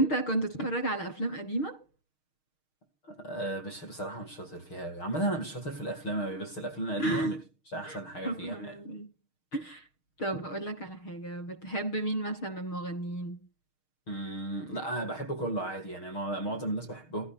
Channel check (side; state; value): right; late; 6.5 ms